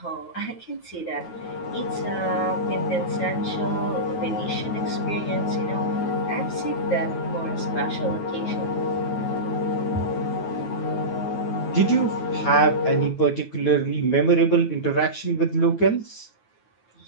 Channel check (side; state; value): right; late; 9.3 ms